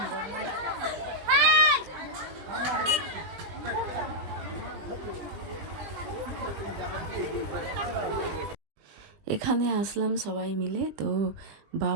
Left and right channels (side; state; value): left; late; 20 ms